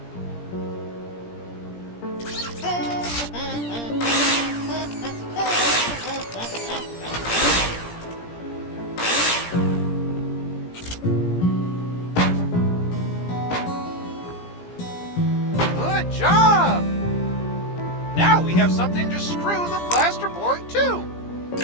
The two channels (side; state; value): right; late; 17 ms